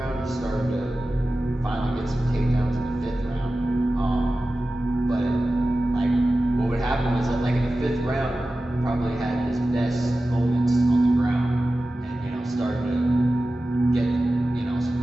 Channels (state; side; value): normal; both; correlation 0.95